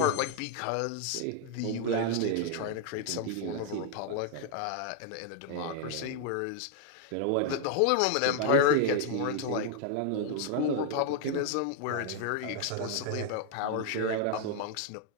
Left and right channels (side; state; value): both; different; correlation 0.00